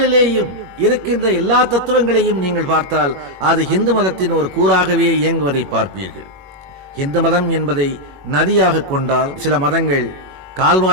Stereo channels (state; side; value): late; left; 21 ms